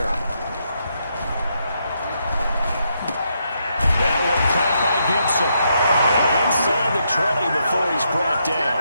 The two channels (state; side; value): inverted; both; correlation -0.79